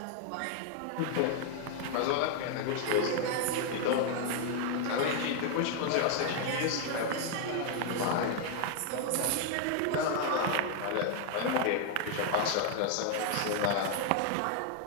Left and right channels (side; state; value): both; different; correlation 0.00